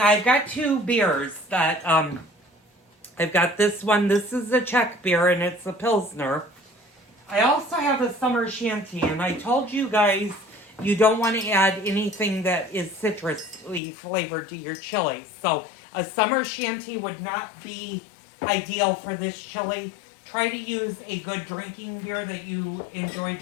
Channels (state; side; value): drops out; right; at 13.8 s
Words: I've got 2 beers that, I've got this one. This is a Czech beer and it's a Pilsner. I also have a summer shanty, and I told you guys you don't want to add anything that is citrusly flavored to your chili. So a summer shanty would not be ideal for this chili. Try to use a good drinking beer that you enjoy